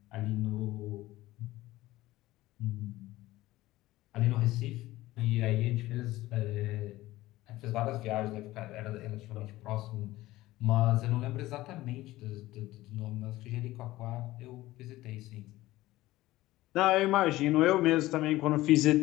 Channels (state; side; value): quieter; right; 17.1 dB